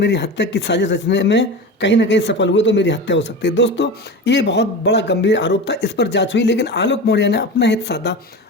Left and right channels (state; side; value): normal; both; correlation 0.28